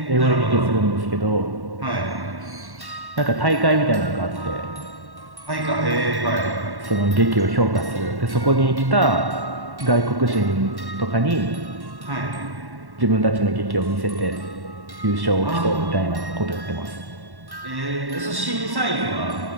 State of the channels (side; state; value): left; late; 1.1 ms